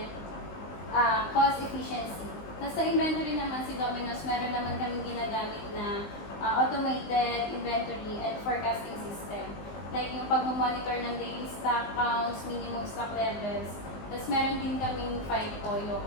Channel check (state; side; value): late; right; 19 ms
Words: cost efficiency. Tapos sa inventory naman si Domino's, meron naman kaming ginagamit na automated inventory and forecasting system. Like yung pag-monitor ng daily stock counts, minimum stock levels. Tapos meron din kaming FIFO